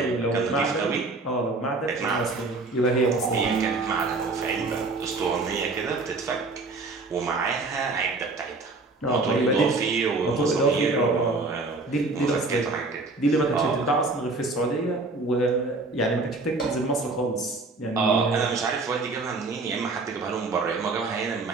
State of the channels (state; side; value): quieter; left; 3.4 dB